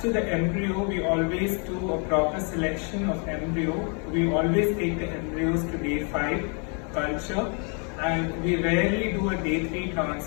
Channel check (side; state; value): right; quieter; 38.3 dB